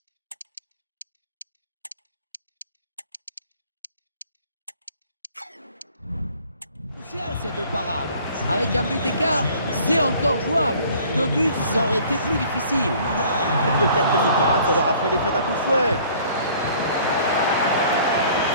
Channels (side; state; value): both; inverted; correlation -0.54